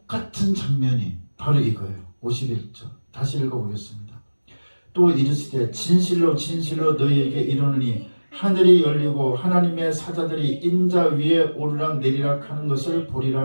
장면이 바로 이거예요. 51절 다시 읽어보겠습니다. 또 이르시되 진실로 진실로 너희에게 이르노니 하늘이 열리고 하나님의 사자들이 인자 위에 오르락 내리락 하는 것을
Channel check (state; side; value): inverted; both; correlation -1.00